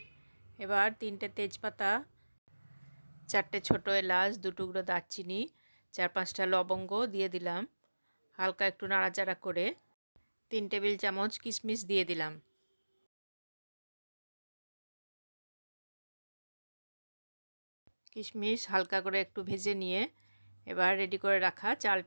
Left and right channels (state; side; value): inverted; both; correlation -1.00